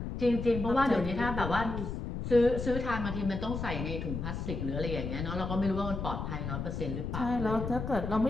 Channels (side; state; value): left; noise; rumble, 4 dB below the sound